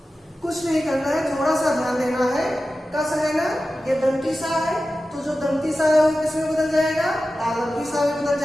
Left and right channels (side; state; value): both; normal; correlation 0.94